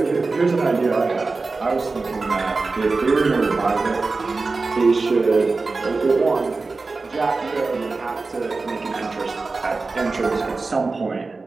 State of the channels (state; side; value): quieter; left; 3.8 dB